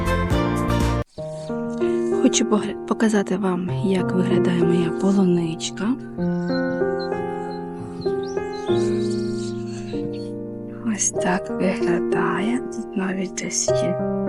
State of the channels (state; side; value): identical; both; correlation 1.00